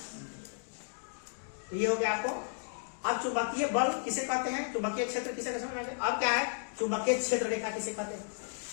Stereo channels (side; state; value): right; silent; digital silence